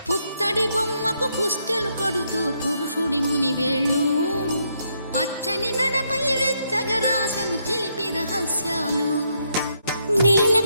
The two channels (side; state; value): both; inverted; correlation -0.76